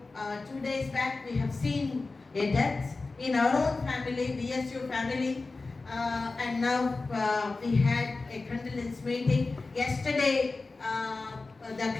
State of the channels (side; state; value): right; quieter; 3.6 dB